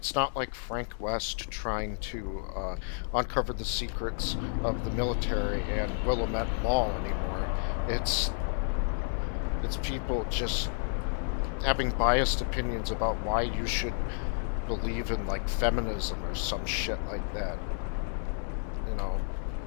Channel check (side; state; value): right; silent; 57 dB below the other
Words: not like Frank West trying to uncover the secrets of the military and Willamette Mall anymore. It's people just having biased opinions about why you should believe in, like, feminism or some shit like that. You know,